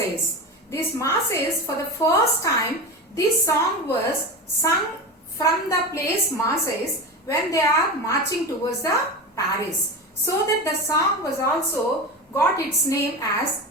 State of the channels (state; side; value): normal; both; correlation 0.25